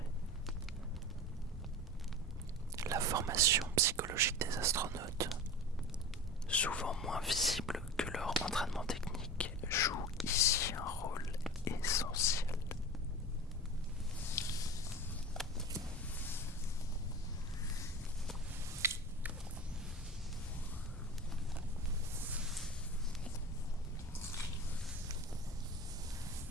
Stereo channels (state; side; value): normal; both; correlation 0.32